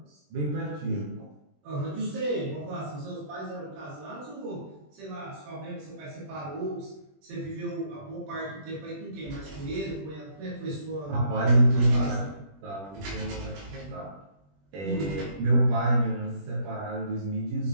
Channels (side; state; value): left; late; 20 ms